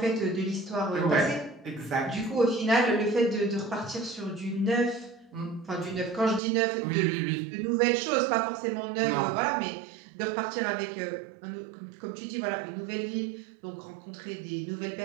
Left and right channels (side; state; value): left; drops out; at 6.4 s